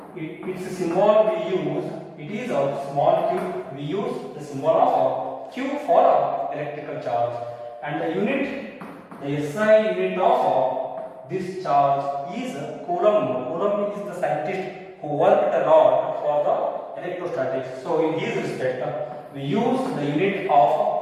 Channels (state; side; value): identical; both; correlation 1.00